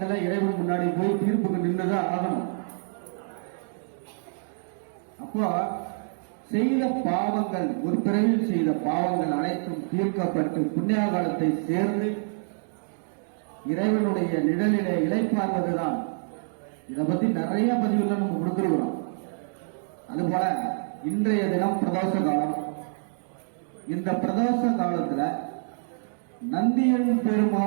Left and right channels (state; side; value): silent; left; digital silence